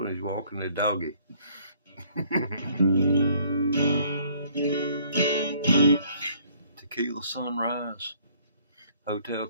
He's walking the doggy. Tequila Sunrise, Hotel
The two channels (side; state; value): both; inverted; correlation -0.61